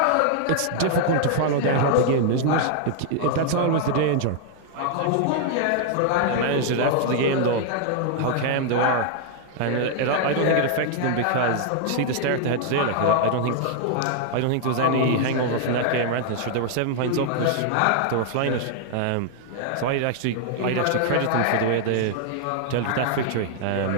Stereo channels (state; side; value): different; both; correlation -0.01